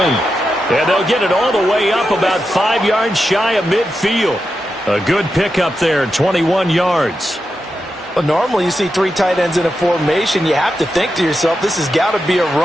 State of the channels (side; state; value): both; normal; correlation 0.88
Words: And they'll get it all the way up about 5 yards shy of midfield. A good pickup there, 21 yards. Well, normally you see 3 tight ends in a formation. You have to think to yourself, this has got to be a